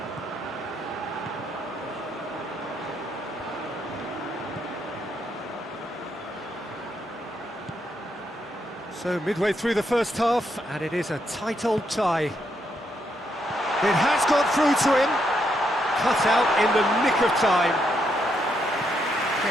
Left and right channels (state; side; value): normal; both; correlation 0.78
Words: So midway through the first half, and it is a tight old tie. It has got through to him. Cut out in the nick of time.